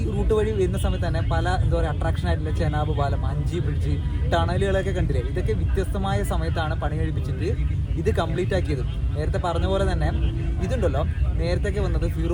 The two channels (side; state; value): both; identical; correlation 1.00